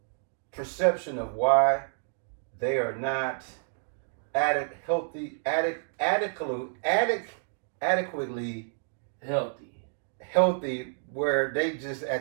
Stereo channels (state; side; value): silent; left; digital silence